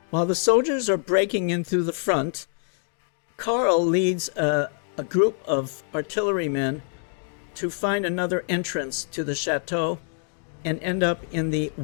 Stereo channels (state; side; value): silent; right; 61 dB below the other